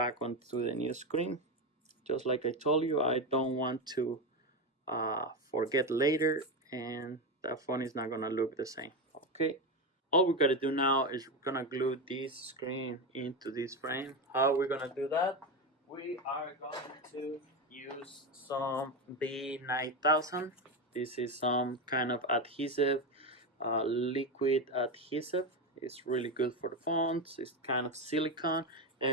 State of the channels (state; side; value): normal; both; correlation 0.14